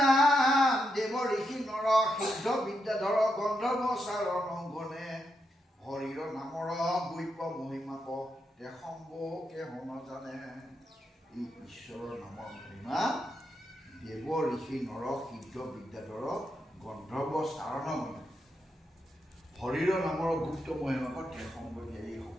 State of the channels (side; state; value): both; normal; correlation 0.83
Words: দেৱ ঋষি নৰ সিদ্ধ বিদ্যাধৰ গন্ধৰ্ব চাৰণ গণে হৰিৰ নামৰ বৈপ্য মহিমাক তে সম্ভকে হন জানে। এই ঈশ্বৰৰ নামৰ মহিমা দেৱ ঋষি নৰ সিদ্ধ বিদ্যাধৰ গন্ধৰ্ব চাৰণ গণে হৰিৰ নামৰ গুপ্ত মহিমাক তে সম্ভকে,